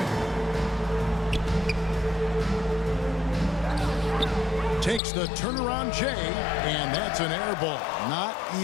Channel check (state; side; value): drops out; right; at 5.0 s